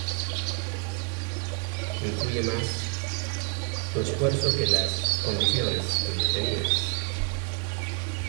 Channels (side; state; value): left; quieter; 34.0 dB